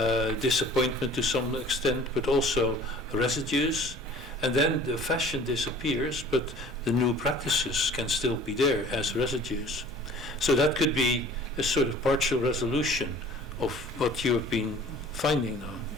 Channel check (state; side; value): normal; both; correlation 0.48